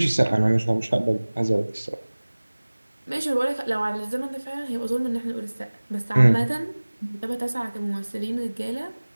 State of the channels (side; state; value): both; inverted; correlation -1.00